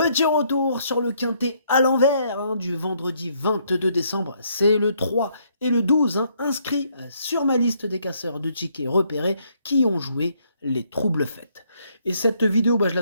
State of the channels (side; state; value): both; inverted; correlation -0.70